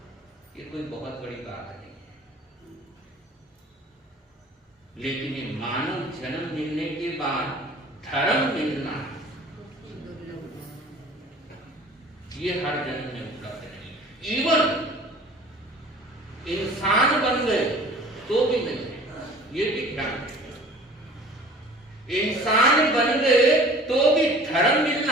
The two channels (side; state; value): both; normal; correlation 0.46